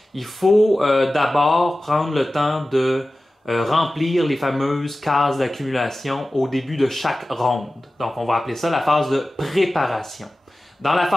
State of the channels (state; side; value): normal; both; correlation 0.96